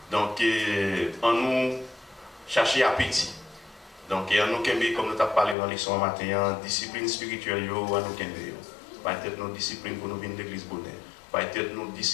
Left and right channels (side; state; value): right; drops out; at 5.6 s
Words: Donc, on nous cherche appétit. Donc, on nous kembe, comme nous avons parlé dans les leçons matin, discipline spirituelle, on nous kembe. Peut-être nos disciplines pour nous venir de l'église bonheur. Peut-être nos